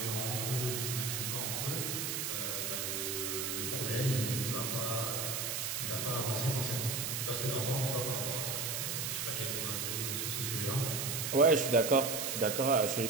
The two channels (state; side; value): noise; right; hiss, 1 dB below the sound